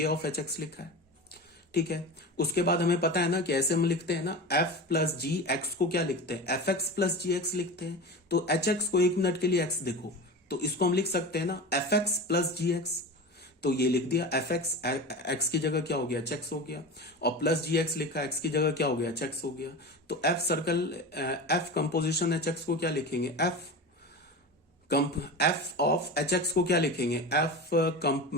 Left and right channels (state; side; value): normal; both; correlation 0.29